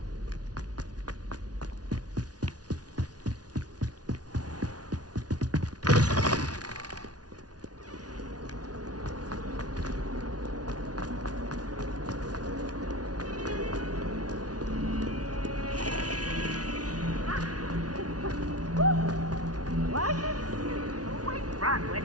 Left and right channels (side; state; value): left; late; 0.69 ms